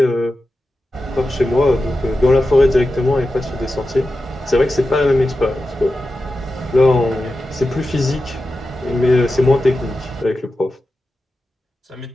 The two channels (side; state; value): both; normal; correlation 0.92